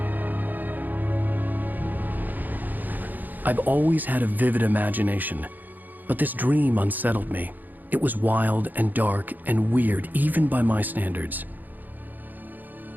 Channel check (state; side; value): late; left; 0.085 ms